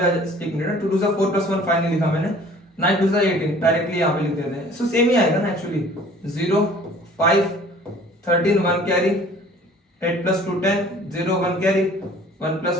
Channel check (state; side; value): normal; both; correlation 0.50